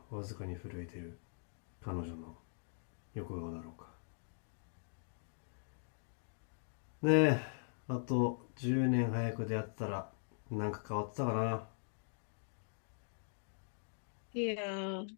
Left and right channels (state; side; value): silent; right; digital silence